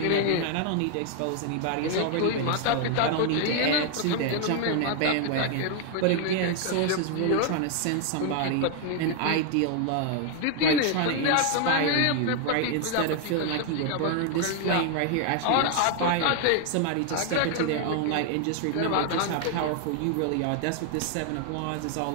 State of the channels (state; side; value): different; both; correlation 0.00